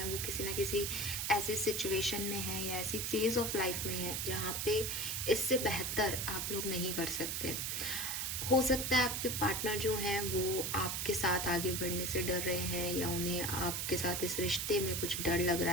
वो किसी ना किसी ऐसी सिचुएशन में हैं या ऐसी फेज ऑफ लाइफ में है जहाँ पे इससे बेहतर आप लोग नहीं कर सकते। हो सकता है आपके पार्टनर जो हैं वो आपके साथ आगे बढ़ने से डर रहे हैं, या उन्हें आपके साथ इस रिश्ते में कुछ डर लग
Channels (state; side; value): noise; right; hiss, 1 dB below the sound